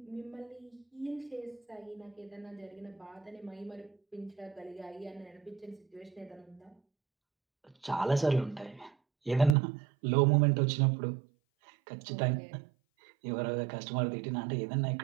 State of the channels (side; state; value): left; drops out; at 9.6 s